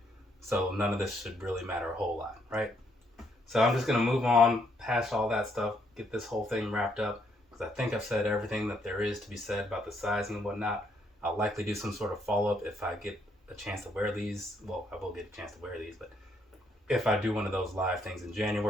so none of this should really matter a whole lot, right? So I'm just going to move on past all that stuff, get this whole thing wrapped up, because I think I've said everything that there is to be said about the sizing and whatnot. I'll likely do some sort of follow-up if I get a chance to wear these. Well, I will get a chance to wear these, but if I do one of those live things in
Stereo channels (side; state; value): both; normal; correlation 0.72